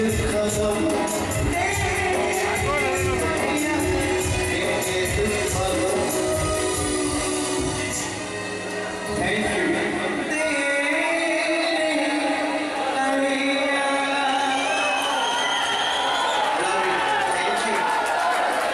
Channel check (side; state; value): both; identical; correlation 1.00